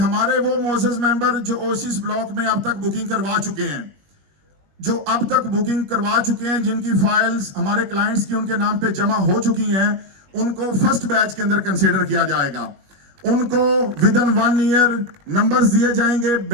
वो मोअज़्ज़ज़ मेंबर जो ओएसिस ब्लॉक में अब तक बुकिंग करवा चुके हैं, जिनकी फाइल्स हमारे क्लाइंट्स की उनके नाम पे जमा हो चुकी हैं, उनको फर्स्ट बैच के अंदर कंसीडर किया जाएगा। उनको विद इन 1 ईयर नंबर्स दिए जाएंगे,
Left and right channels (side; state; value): left; late; 20 ms